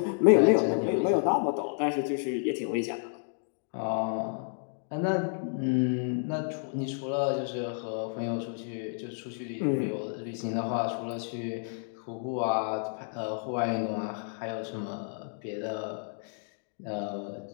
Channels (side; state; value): right; silent; digital silence